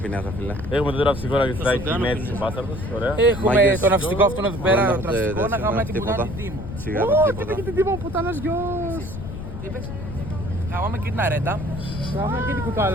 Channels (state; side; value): noise; left; rumble, 8 dB below the sound